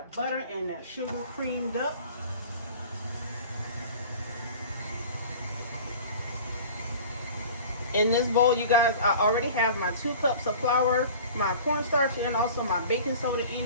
butter and that sugar creamed up. In this bowl, you guys, I already have my 2 cups of flour, my cornstarch, and also my baking soda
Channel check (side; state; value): both; inverted; correlation -0.42